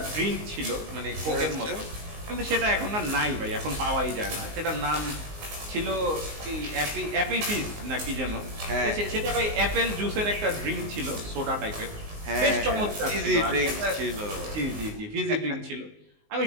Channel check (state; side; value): late; left; 19 ms